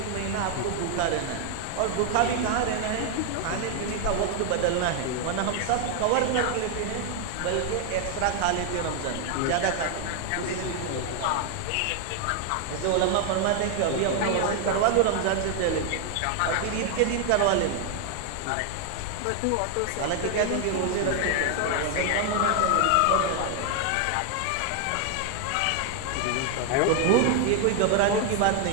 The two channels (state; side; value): different; both; correlation 0.00